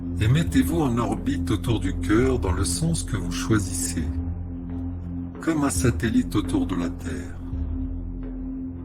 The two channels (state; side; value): identical; both; correlation 1.00